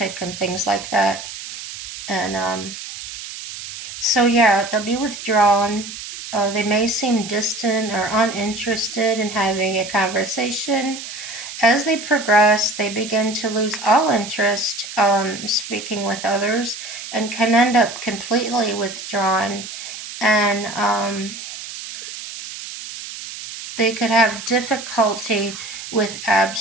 and things like that. And so, yeah, they'll be withdrawn. They may seem distant or uninterested in having a conversation. As they progress, they begin to lose all interest speaking with others and can end up completely withdrawn. And they could have difficulty with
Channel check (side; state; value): right; noise; hiss, 10 dB below the sound